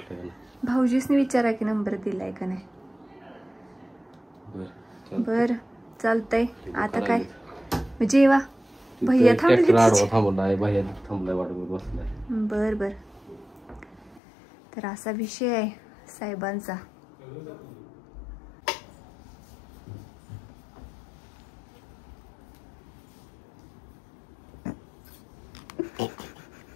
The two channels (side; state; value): right; drops out; at 14.2 s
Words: का नाही. भाऊजीसनी विचारा की नंबर दिलाय का नाही. बर चालतंय. आता काय जेवा. भैया थांबलाय. भैया थांबलाय वाट बसलाय. बर बर. तर असा विषय आहे साहेबांचा.